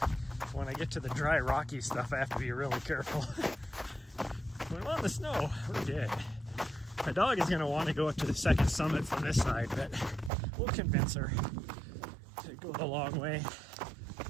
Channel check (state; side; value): drops out; left; at 10.3 s